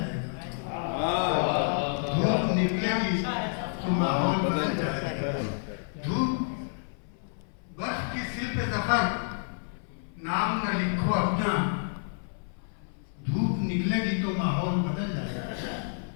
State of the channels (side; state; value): right; silent; 58 dB below the other